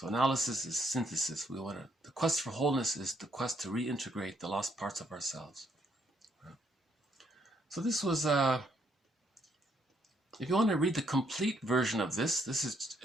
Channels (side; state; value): both; normal; correlation 0.72